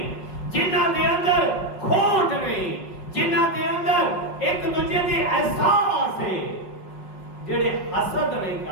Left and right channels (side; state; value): right; late; 5.5 ms